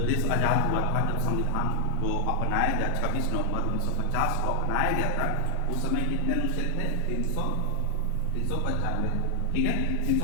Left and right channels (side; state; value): both; different; correlation 0.00